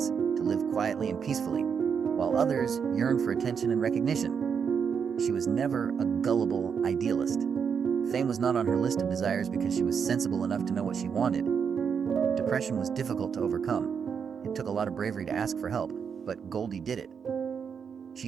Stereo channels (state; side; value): quieter; left; 6.7 dB